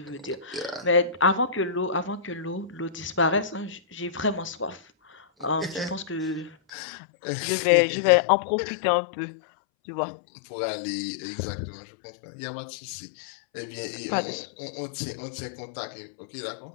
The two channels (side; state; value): right; drops out; at 6.6 s